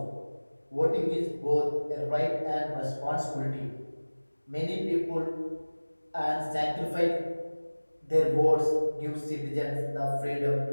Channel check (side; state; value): both; inverted; correlation -1.00